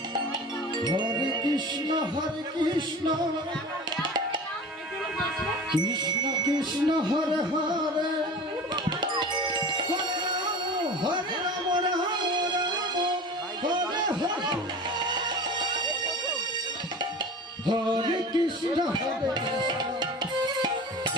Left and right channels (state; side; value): normal; both; correlation 0.36